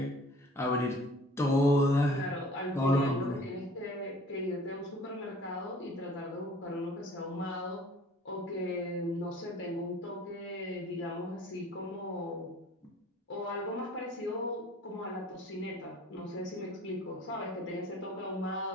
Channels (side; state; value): both; normal; correlation 0.49